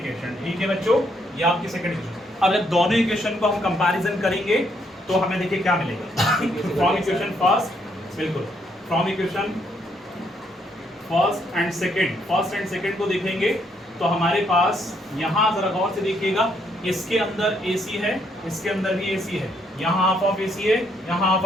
ठीक है बच्चों, ये आपकी सेकंड इक्वेशन। अब जब दोनों इक्वेशन को हम कंपैरिजन करेंगे तो हमें देखिए क्या मिलेगा। फ्रॉम इक्वेशन फर्स्ट, बिल्कुल from equation first and second को देखेंगे तो हमारे पास यहाँ जरा गौर से देखिएगा, इसके अंदर AC है, इसके अंदर भी AC है, यहाँ हाफ ऑफ AC है, यहाँ हाफ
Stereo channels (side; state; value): both; normal; correlation 0.72